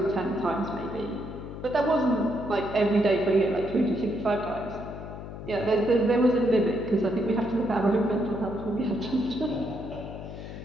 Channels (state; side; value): noise; left; hum, 11 dB below the sound